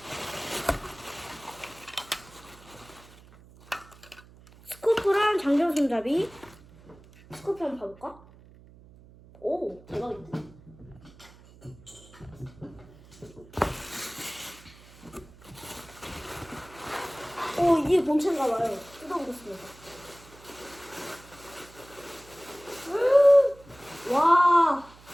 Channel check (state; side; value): noise; right; hum, 23 dB below the sound